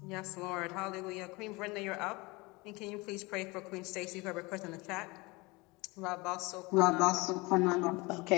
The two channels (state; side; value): quieter; right; 24.6 dB